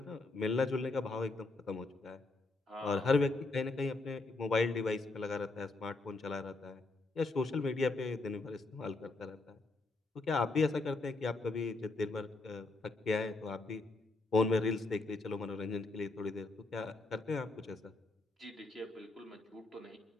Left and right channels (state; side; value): quieter; right; 3.3 dB